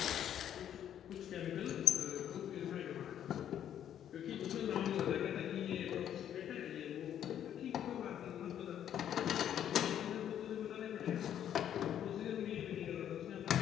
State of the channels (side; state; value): right; quieter; 10.1 dB